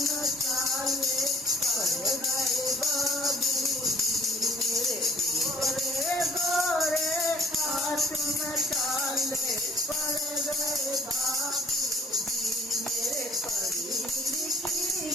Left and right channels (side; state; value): both; normal; correlation 0.58